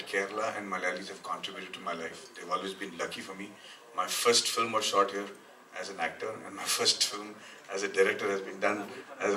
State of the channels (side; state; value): both; identical; correlation 1.00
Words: Kerala and Malayalis have contributed to my life. They've always been lucky for me. My first film was shot here as an actor, and my first film as a director has been done as